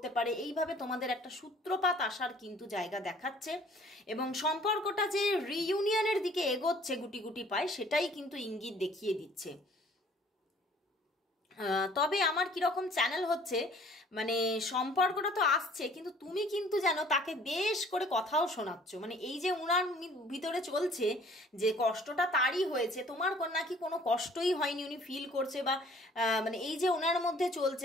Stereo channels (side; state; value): both; normal; correlation 0.55